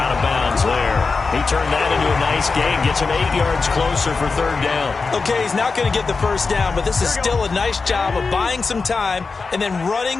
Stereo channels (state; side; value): quieter; right; 4.4 dB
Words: of bounds there. He turned that into a nice gain. Gets him 8 yards closer for 3rd down. Okay, he's not going to get the first down, but this is still a nice job of buying some time and then